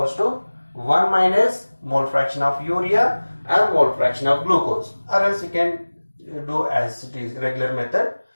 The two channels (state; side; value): inverted; both; correlation -1.00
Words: to 1 minus mole fraction of urea and mole fraction of glucose, or else you can do as it is regular method,